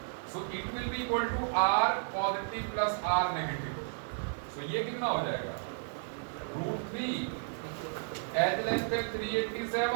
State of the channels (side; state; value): left; silent; digital silence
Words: so it will be equal to r positive plus r negative. So ये कितना हो जाएगा, √3 एज लेंथ है